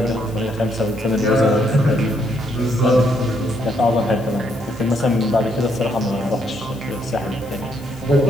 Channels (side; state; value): left; noise; hiss, 24 dB below the sound